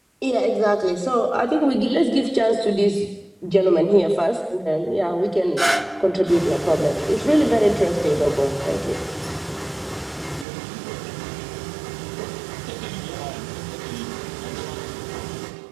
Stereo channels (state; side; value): drops out; left; at 10.5 s